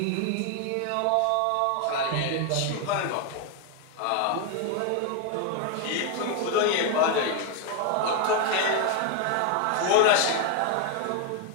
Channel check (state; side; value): different; both; correlation 0.01